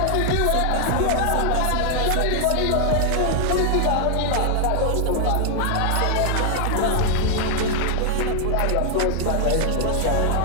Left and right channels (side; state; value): both; different; correlation 0.00